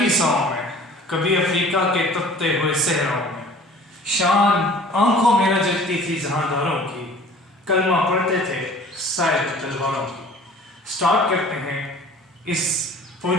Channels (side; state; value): both; normal; correlation 0.48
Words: में, कभी अफ्रीका के तपते हुए सहराओं में। शान आंखों में न जगती थी जहांदारों की, कलमा पढ़ते थे शायद तलवारों की। स्टार्ट करते हैं इस